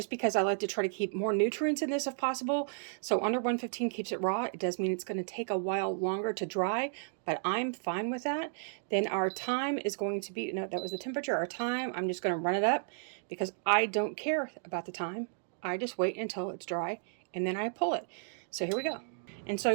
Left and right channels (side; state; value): left; silent; digital silence